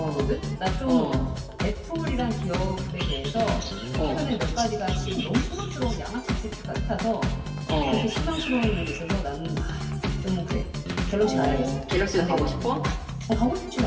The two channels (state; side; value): identical; both; correlation 1.00